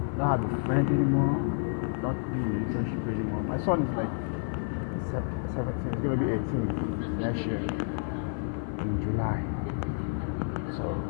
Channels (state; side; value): silent; right; 58 dB below the other